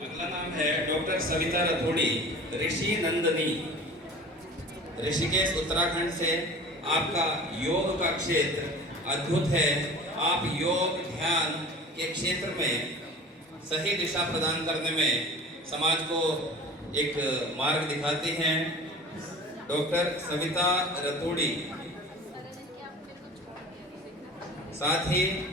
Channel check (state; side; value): normal; both; correlation 0.40